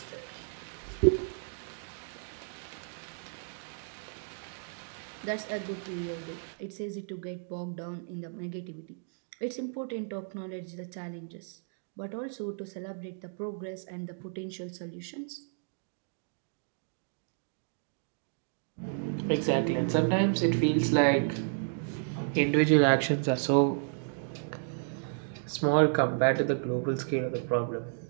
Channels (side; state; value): left; silent; digital silence